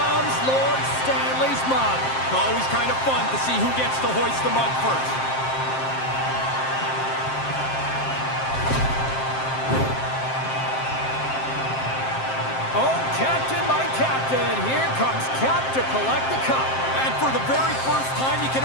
Lord Stanley's mug. Always kind of fun to see who gets to hoist the mug first. Oh, Captain, my Captain. Here comes Cap to collect the cup. And for the very first time, you can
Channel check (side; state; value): right; late; 7.6 ms